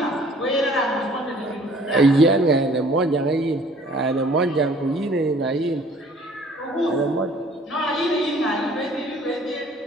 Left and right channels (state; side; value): normal; both; correlation 0.54